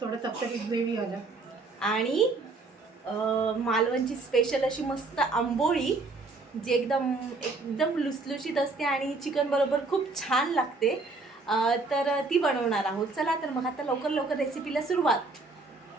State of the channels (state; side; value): quieter; left; 3.7 dB